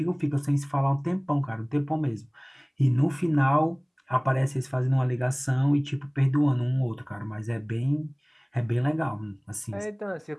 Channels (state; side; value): identical; both; correlation 1.00